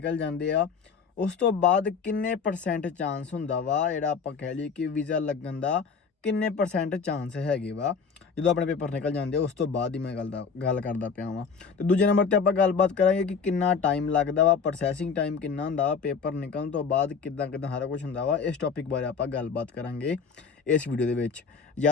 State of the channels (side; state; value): right; quieter; 5.7 dB